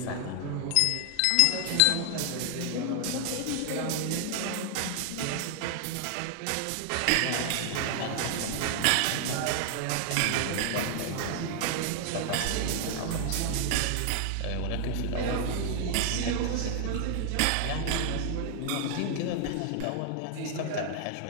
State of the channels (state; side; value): different; both; correlation 0.00